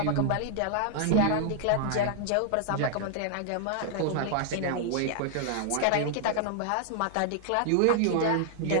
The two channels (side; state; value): both; different; correlation -0.01